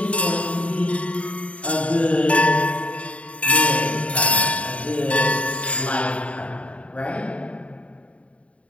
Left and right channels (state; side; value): late; right; 0.064 ms